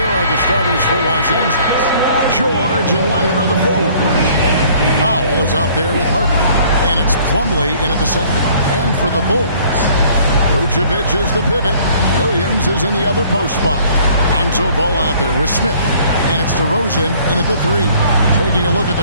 are the starters for Los Angeles. George and Leonard are the forwards. Powell is out there with Harden, and it's Plumlee in at the center. And for the Bulls, Vucevic is the pivot. Williams is in the other post spot. Lonzo Ball out there with Smith. And it's DeRozan in at the 3. Taking a look at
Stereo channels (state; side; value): inverted; both; correlation -0.56